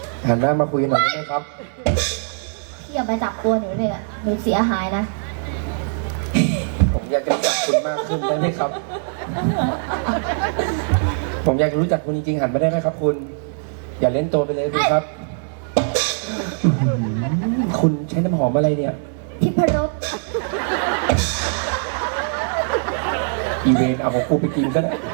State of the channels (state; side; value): silent; left; digital silence